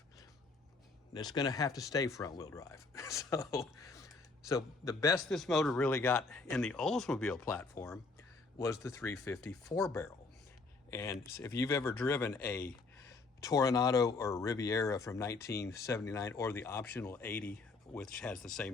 It's going to have to stay front-wheel drive. So the best this motor really got in the Oldsmobile platform was the 350 4-barrel. And if you've ever driven a Tornado or Riviera from 1979, or the optional 80, which has the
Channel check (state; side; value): quieter; right; 3.9 dB